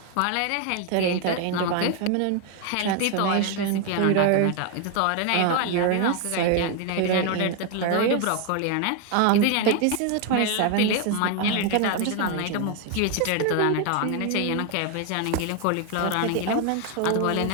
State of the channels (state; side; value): different; both; correlation 0.01